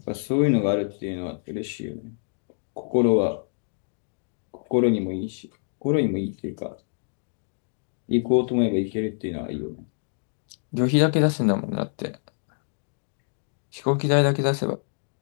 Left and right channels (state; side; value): silent; right; digital silence